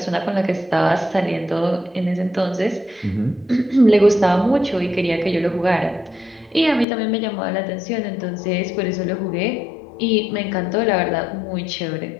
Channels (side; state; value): right; drops out; at 6.9 s